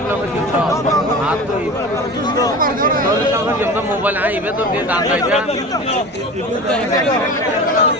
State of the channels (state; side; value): normal; both; correlation 0.33